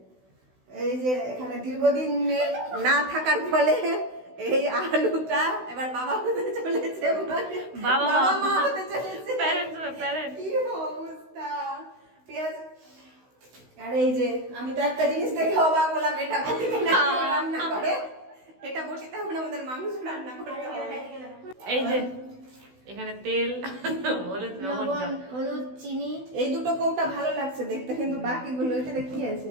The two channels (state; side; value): late; left; 16 ms